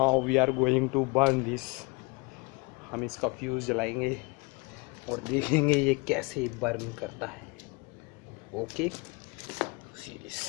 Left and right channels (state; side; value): quieter; right; 28.4 dB